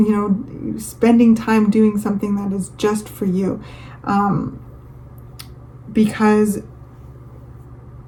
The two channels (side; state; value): both; identical; correlation 1.00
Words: know, spending time doing something that is just for you, because